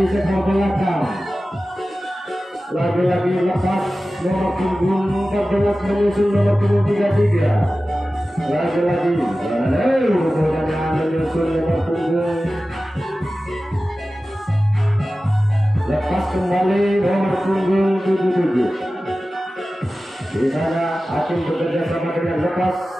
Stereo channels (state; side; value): normal; both; correlation 0.95